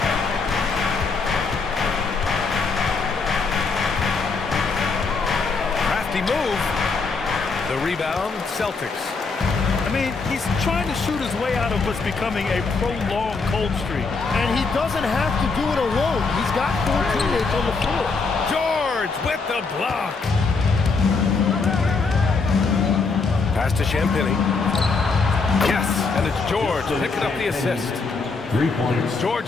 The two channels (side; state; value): right; quieter; 4.4 dB